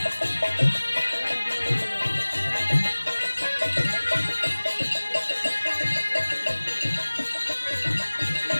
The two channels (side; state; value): both; inverted; correlation -1.00